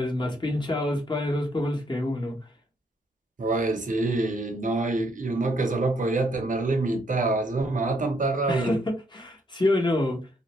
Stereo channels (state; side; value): normal; both; correlation 0.72